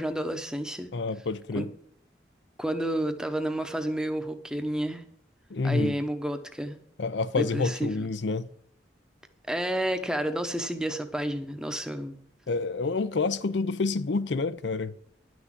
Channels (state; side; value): normal; both; correlation 0.57